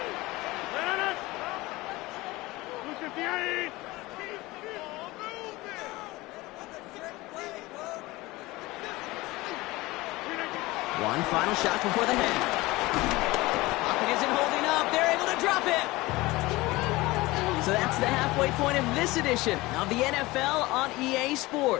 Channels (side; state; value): right; quieter; 20.5 dB